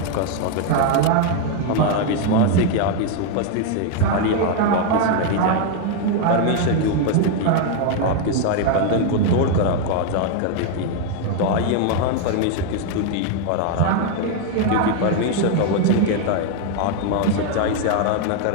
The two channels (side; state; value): both; different; correlation 0.00